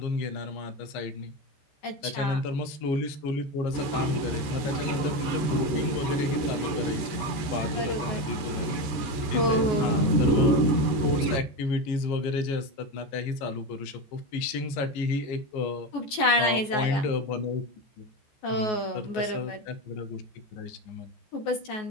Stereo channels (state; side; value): late; right; 14 ms